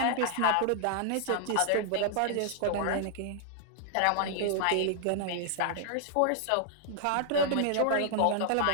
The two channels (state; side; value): different; both; correlation -0.01